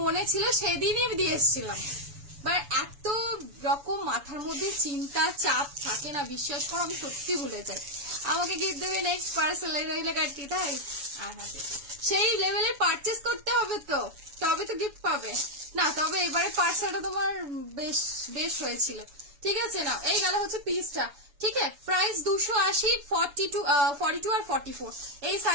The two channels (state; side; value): late; left; 7.1 ms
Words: মনে ছিল, সেদিনই দিয়ে এসেছিলাম। বাট এত রকম মাথার মধ্যে চিন্তা চাপ থাকে না, বিশ্বাস করো আমি সত্যি ভুলে যাই। আমাকে গিফট দেবে নেক্সট পার্সেল রইলে কাটতি, তাই সেই লেভেলে পারচেস করতে হবে তো, তবে তো গিফট পাবে না। তবে এবারে পার্সেলটা তোমার বেশ বেশ হয়েছিল, ঠিক আছে না। এই গেল হচ্ছে পিসটা, ঠিক আছে। প্রাইস 280, 42 আর 44 এই